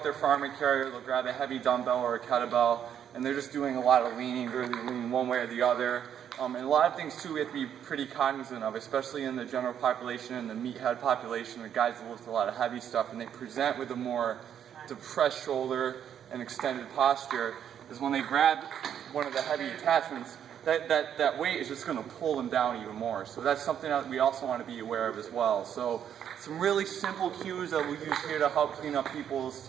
their farming carrier, they'll grab a heavy dumbbell or a kettlebell, and they're just doing a lot of leaning, really leaning one way or the other. And a lot of things too we have to be pretty cognizant of, especially in the general population and the meathead population, the guys that lift a lot of heavy stuff and they present with a more depressed shoulder and extended posture, is when they grab one of the heavy attachments, that weight is just going to pull them down even more. So that's something that we also want to be aware of as well. So some really simple cues that we use here to help clean up people's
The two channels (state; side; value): quieter; left; 9.2 dB